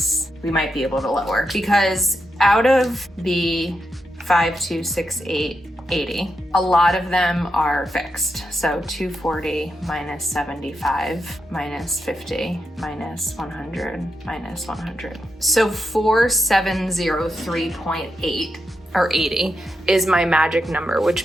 we might be able to lower, because out of the 526880, a lot of them are fixed. So 240 minus 75 minus 50 minus 100 minus 100. So 4703.8 or 80 is my magic number,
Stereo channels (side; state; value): both; normal; correlation 0.85